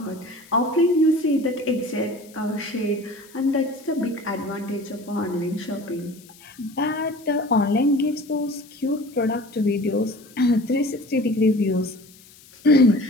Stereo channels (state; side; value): noise; left; hiss, 24 dB below the sound